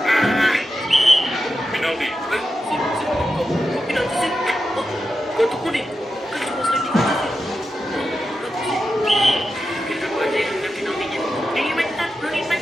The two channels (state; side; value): normal; both; correlation 0.90